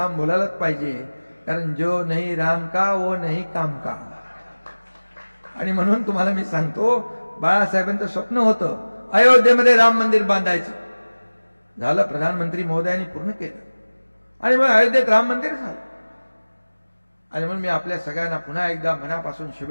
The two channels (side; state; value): both; inverted; correlation -1.00